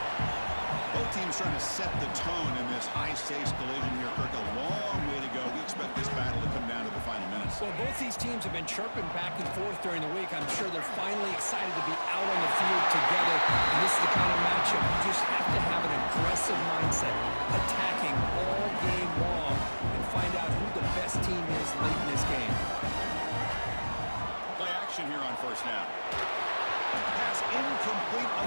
Both teams trying to set the tone in this high-stakes collision here. Kirk, a long way to go. We expect this battle to come down to the final minutes. Well, both these teams have been chirping back and forth during the week. I'm sure they're finally excited to be out on the field together. And this is the kind of matchup you just have to have an aggressive mindset, attacking all game long, and find out who the best team is late in this game. Play action here on 1st down. Pass incomplete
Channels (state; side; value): inverted; both; correlation -1.00